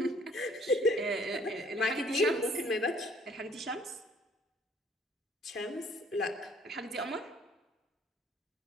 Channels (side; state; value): both; normal; correlation 0.59